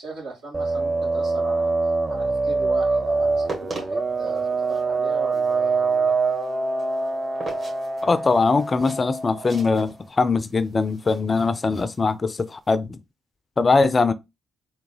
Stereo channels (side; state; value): both; normal; correlation 0.88